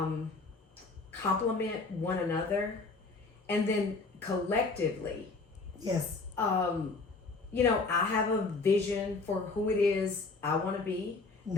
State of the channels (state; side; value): quieter; right; 3.9 dB